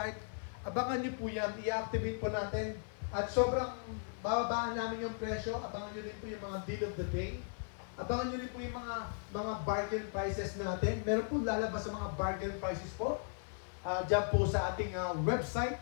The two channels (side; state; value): right; silent; 53 dB below the other